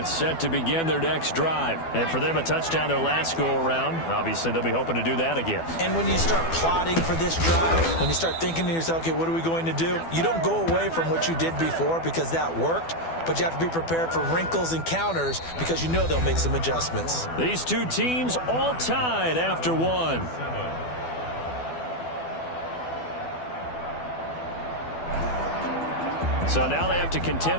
set to begin their next drive. And for them, a touchdown their last go-around. Obviously, they'll be hoping to do that again. And when you start plotting for this drive, when you start thinking to yourself, okay, what are we going to do? You don't go away from what you did before because that worked, but you have to be prepared for wrinkles and counters because you know they'll make some adjustments. These two teams all tied after one. So now they have to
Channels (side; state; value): right; late; 12 ms